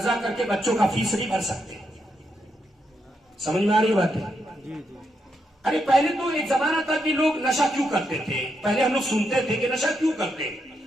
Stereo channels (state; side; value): normal; both; correlation 0.81